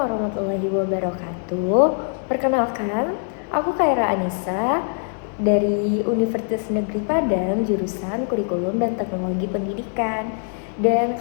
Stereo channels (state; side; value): silent; right; 60 dB below the other